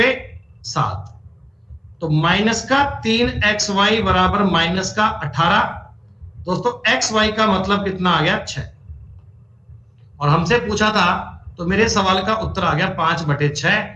7, तो माइनस का 3xy बराबर माइनस का 18। दोस्तों xy का मतलब कितना आ गया? 6। और हमसे पूछा था, तो मेरे सवाल का उत्तर आ गया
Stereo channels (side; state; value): both; identical; correlation 1.00